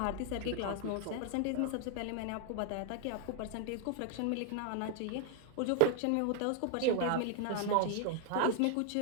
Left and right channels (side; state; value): both; different; correlation 0.00